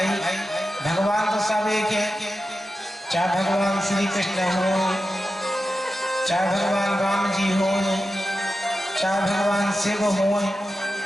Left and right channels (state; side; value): normal; both; correlation 0.92